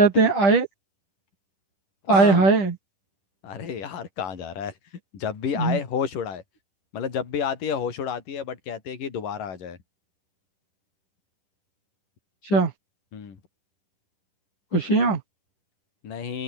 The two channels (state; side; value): late; right; 11 ms